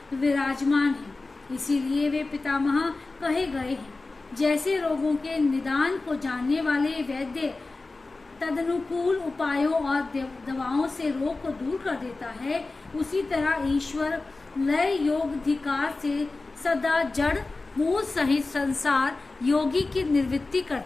विराजमान हैं। इसीलिए वे पितामह कहे गए हैं। जैसे रोगों के निदान को जानने वाले वैद्य तदनुकूल उपायों और दवाओं से रोग को दूर कर देता है, उसी तरह ईश्वर लय योगाधिकार से सदा जड़ मूल सहित संसार योगी की निवृत्ति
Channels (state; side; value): quieter; right; 3.4 dB